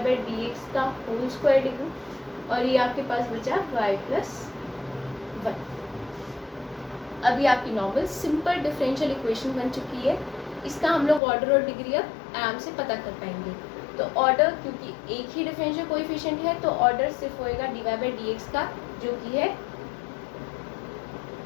का होल स्क्वायर लिखूँ और ये आपके पास बचा y+1। अभी आपकी नॉर्मल सिंपल डिफरेंशियल इक्वेशन बन चुकी है। इसका हम लोग ऑर्डर और डिग्री अब आराम से पता कर पाएंगे। तो ऑर्डर, क्योंकि एक ही डिफरेंशियल कोएफिशिएंट है तो ऑर्डर सिर्फ होएगा dy/dx का, जो कि है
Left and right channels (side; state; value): right; drops out; at 11.2 s